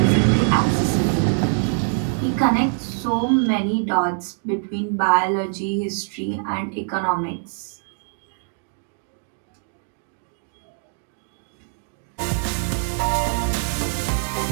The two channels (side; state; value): left; silent; 59 dB below the other